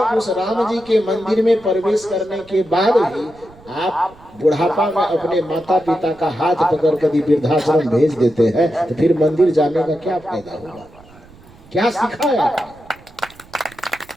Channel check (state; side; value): noise; right; rumble, 24 dB below the sound